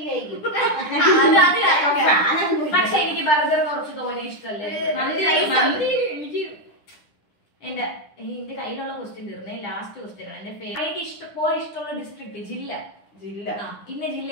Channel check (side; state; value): right; late; 9.9 ms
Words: പക്ഷെ എനിക്ക് ബർഗർ കുറച്ച് തോനെ ഇഷ്ടമല്ലേ. മന്തി എനിക്ക് എന്റെ കയ്യിലുള്ള ക്വസ്റ്റ്യൻ തീർന്നേ. ലാസ്റ്റ് ക്വസ്റ്റ്യൻ ആണ് എന്റെ എനിക്ക് ഇഷ്ടമുള്ള ഡിസ്ട്രിക്ട് ജില്ല ഇന്ന ജില്ല